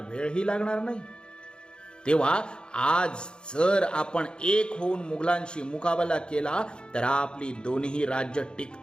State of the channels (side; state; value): right; late; 0.050 ms